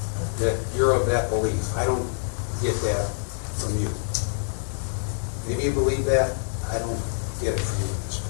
you're of that belief. I don't get that from you. Maybe you believe that. I don't get it from you at this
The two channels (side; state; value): right; silent; digital silence